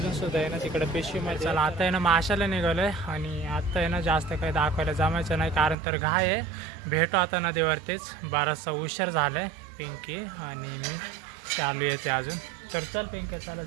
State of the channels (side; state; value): left; drops out; at 5.8 s